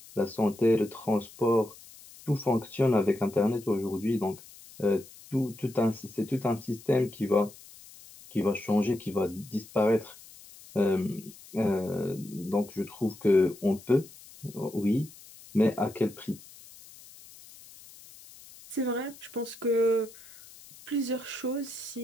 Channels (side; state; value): left; noise; hiss, 20 dB below the sound